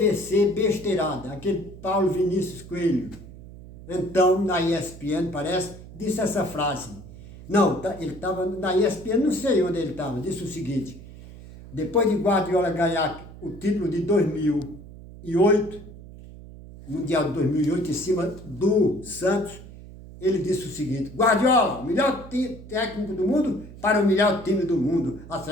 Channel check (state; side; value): noise; right; hum, 16 dB below the sound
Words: Besteirada, aquele Paulo Vinícius Coelho. Então, na ESPN, parece, disse essa frase. Não, ele estava na ESPN, não sei onde ele estava, disse o seguinte: depois de Guardiola ganhar o título de 2008, Mundial de 2008, em cima do Santos, ele disse o seguinte: Guardiola, melhor técnico do mundo para o melhor time do mundo, a